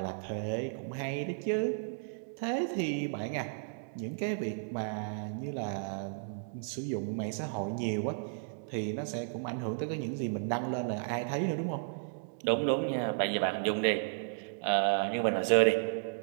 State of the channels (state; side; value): silent; left; digital silence